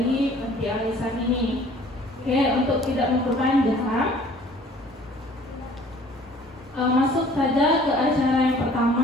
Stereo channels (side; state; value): both; normal; correlation 0.53